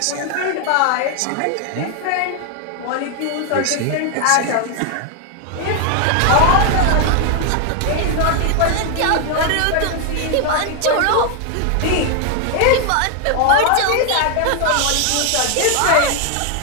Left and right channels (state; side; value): different; both; correlation 0.00